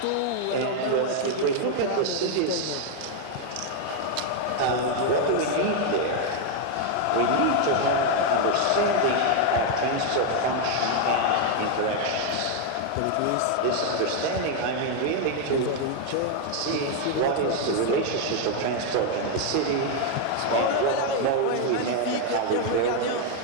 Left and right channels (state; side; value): different; both; correlation 0.01